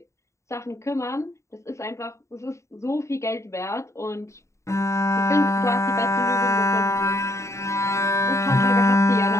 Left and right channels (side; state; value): right; late; 0.14 ms